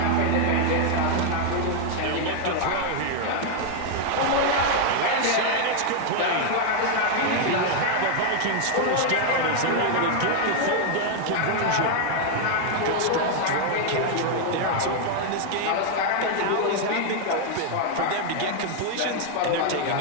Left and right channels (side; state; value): both; different; correlation 0.00